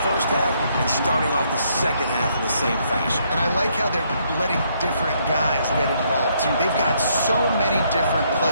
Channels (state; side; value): inverted; both; correlation -0.71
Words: first half and starting off the second half in the same fashion. And I like how they're letting different guys get involved, too. They've got so many different